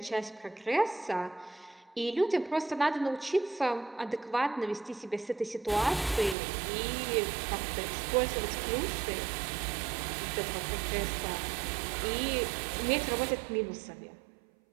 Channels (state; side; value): drops out; left; at 6.4 s